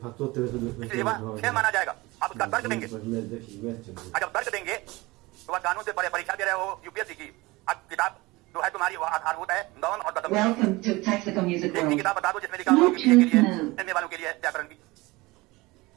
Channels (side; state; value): left; quieter; 21.8 dB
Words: इसलिए वह 6 माना जाएगा। आप उसका तर्क देंगे, और जब तर्क देंगे तो वह कानून से परे परीक्षा दे रहे हो यूपीएससी की। अब किताब जो है तुम्हारी वह आधारभूत है नौन और दसम। एक किताब बता दो जिसमें लिखा हुआ के लिए एमए वालों के लिए व्याकरण की।